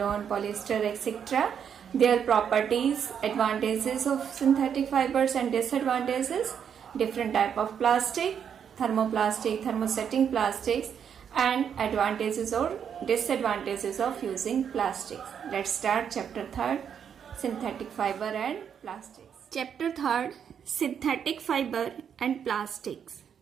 polyester etc. Their properties, advantages of synthetic fibers and disadvantages, different type of plastic, thermoplastic, thermosetting plastics and advantages or disadvantages of using plastics. Let's start chapter 3rd synthetic fiber and plastics. Chapter 3rd synthetic fiber and plastics.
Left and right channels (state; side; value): quieter; left; 7.9 dB